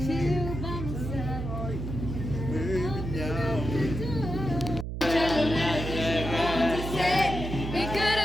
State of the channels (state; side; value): noise; right; hum, 5 dB below the sound